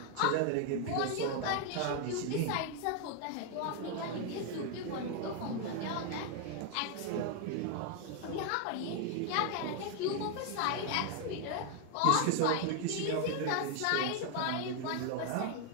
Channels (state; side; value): different; both; correlation 0.00